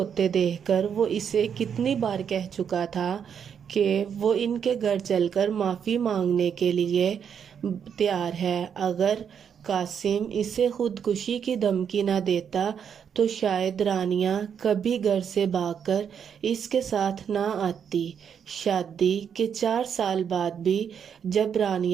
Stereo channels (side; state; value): left; quieter; 7.7 dB